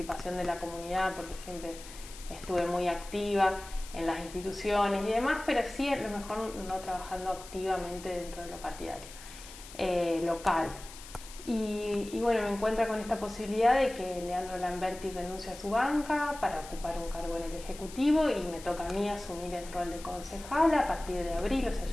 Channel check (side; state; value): left; noise; hiss, 16 dB below the sound